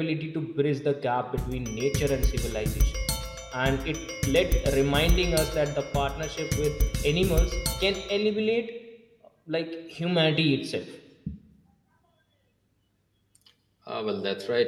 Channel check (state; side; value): identical; both; correlation 1.00